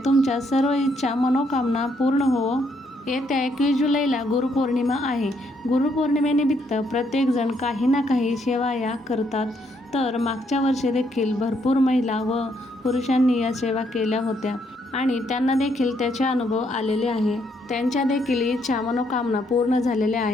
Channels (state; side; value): normal; both; correlation 0.73